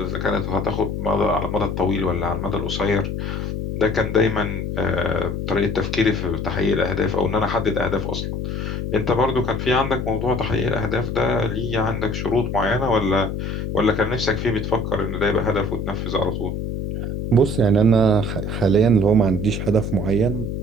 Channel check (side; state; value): left; noise; hum, 3 dB below the sound